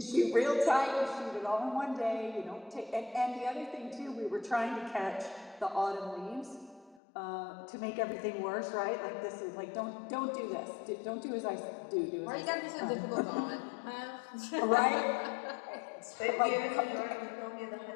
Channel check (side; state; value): right; drops out; at 7.0 s